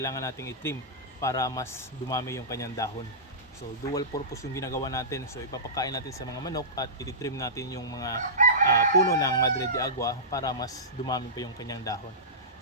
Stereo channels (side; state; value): both; normal; correlation -0.19